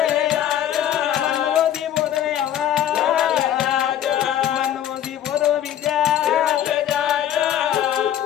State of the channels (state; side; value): quieter; right; 11.0 dB